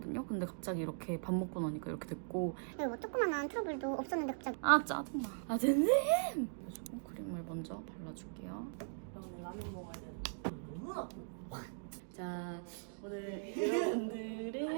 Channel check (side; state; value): left; silent; digital silence